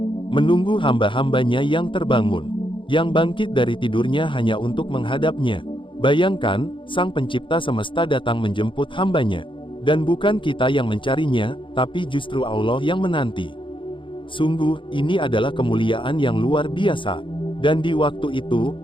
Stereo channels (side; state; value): right; late; 0.24 ms